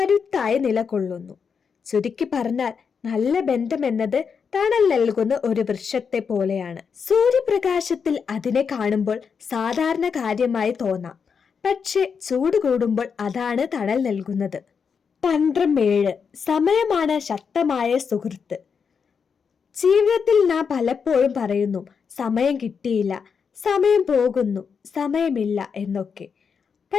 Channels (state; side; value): quieter; right; 6.2 dB